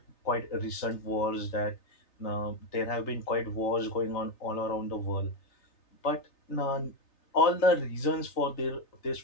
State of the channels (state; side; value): late; right; 3.3 ms